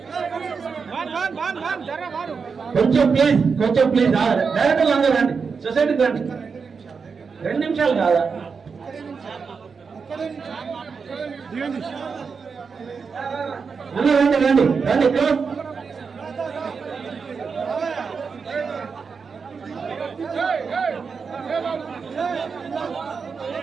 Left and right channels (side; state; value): left; quieter; 5.4 dB